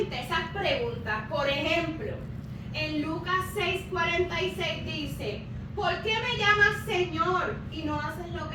esas preguntas. Por ejemplo, en Lucas 6:46 dice, ¿por qué me llamas Señor y no haces lo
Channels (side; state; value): both; identical; correlation 1.00